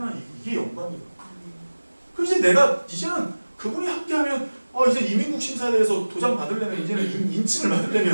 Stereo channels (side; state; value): both; inverted; correlation -1.00